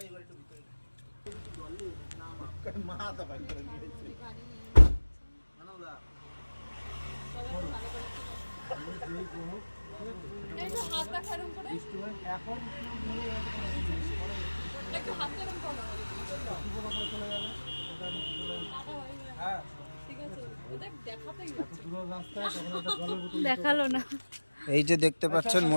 দেখালো না। এই যে দেখতে পাচ্ছেন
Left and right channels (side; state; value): both; inverted; correlation -1.00